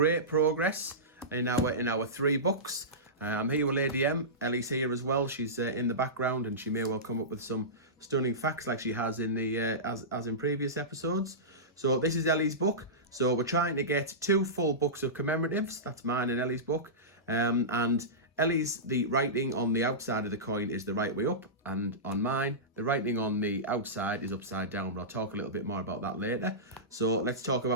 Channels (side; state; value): both; normal; correlation -0.18